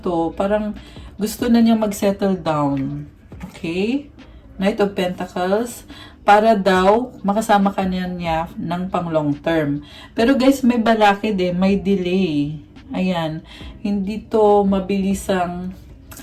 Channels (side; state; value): both; identical; correlation 1.00